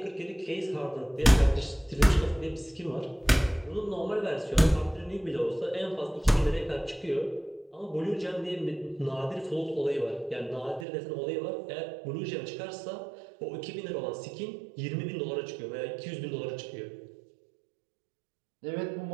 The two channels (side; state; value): left; drops out; at 10.9 s